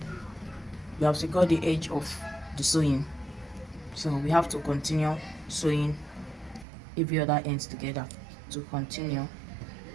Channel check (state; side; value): drops out; left; at 6.7 s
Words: the sewing. So we have to continue sewing every other ends together to continue.